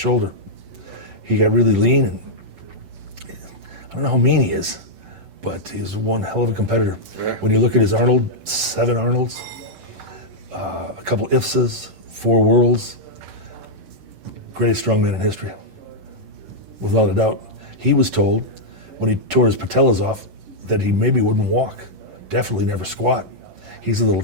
He got really lean, and I don't know how mean he is, but he's one hell of a competitor. Yeah. When you look at his Arnold, 7 Arnolds, a couple IFSAs, 4 Worlds, greatest strongman in history, without a doubt. He was told when he tore his patellas off that he maybe wouldn't walk, definitely never squat. He's a little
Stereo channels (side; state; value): left; late; 11 ms